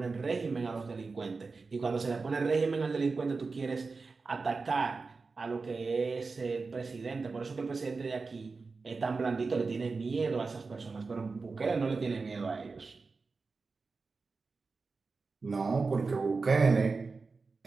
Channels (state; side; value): quieter; left; 4.3 dB